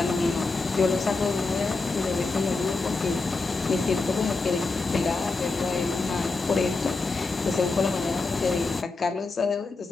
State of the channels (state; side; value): quieter; right; 3.8 dB